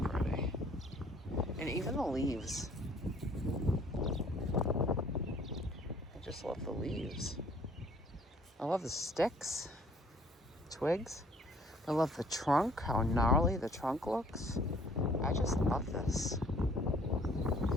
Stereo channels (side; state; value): both; normal; correlation 0.57